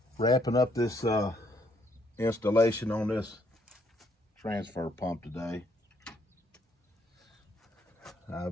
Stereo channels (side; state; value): both; normal; correlation 0.70